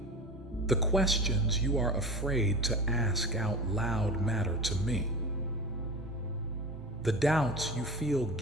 The questions you are afraid to ask out loud matter to me. The doubts you feel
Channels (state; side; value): normal; both; correlation 0.32